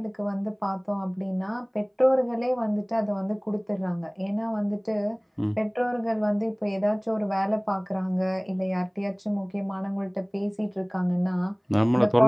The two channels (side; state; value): both; identical; correlation 1.00